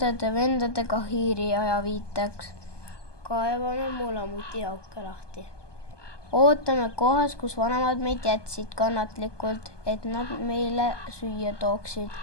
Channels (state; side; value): late; right; 1.2 ms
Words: hiiri ajaviiteks. Kaevame mulamuti auke lahti. Ootame kohas, kus vanemad meid jätsid kannatlikult, et nad meile süüa tooksid.